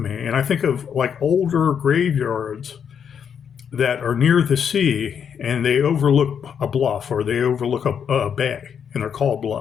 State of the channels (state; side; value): quieter; right; 7.6 dB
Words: And I think of like older graveyards that are near the sea and they overlook a bluff or they overlook a bay, and they're called